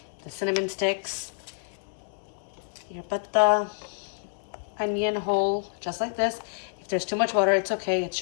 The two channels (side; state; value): right; silent; 59 dB below the other